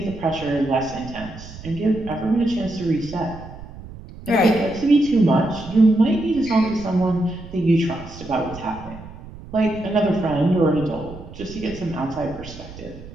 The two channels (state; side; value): noise; right; rumble, 15 dB below the sound